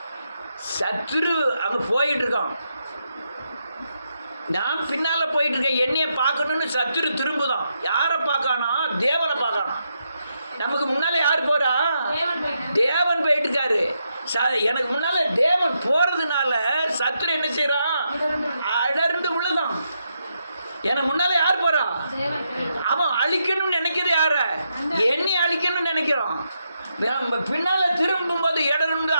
சத்துரு அங்கே போயிட்டு இருக்கான், நான் பின்னால் போயிட்டு இருக்கேன். என்னைய பார்க்கணும்னு சத்துரு திரும்புதான். யாரை பார்க்கானா? தேவனை பார்க்கானா. நமக்கு முன்னால் யார் போகிறா? தேவன் போயிட்டு இருக்காரு. எனக்கு முன்னால் தேவன் போகிறதுனால சத்துரு என்ன செய்கிறான்? அடர்ந்து விழுதான். எனக்கு முன்னால் யார் போகிறா? அவன் அழிக்கணும்னு நினைக்கிறது யார? என்னை அழிக்கணும்னு நினைக்கிறான். பின்னால் திரும்பும்போது இடர்ந்து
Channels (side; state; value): both; inverted; correlation -0.82